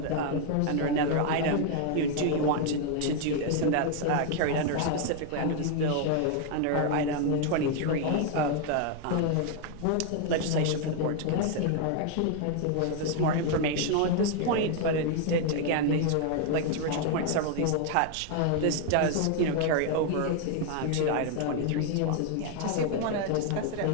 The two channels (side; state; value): both; different; correlation 0.00